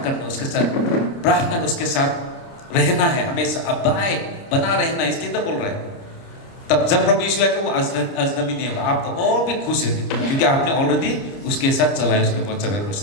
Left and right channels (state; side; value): late; right; 29 ms